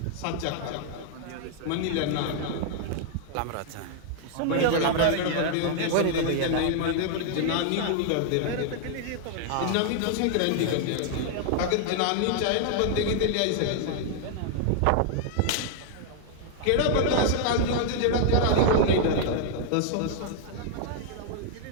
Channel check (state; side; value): different; both; correlation 0.00